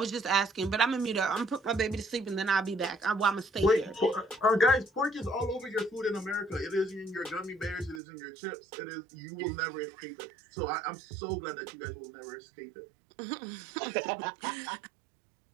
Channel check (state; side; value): drops out; left; at 8.0 s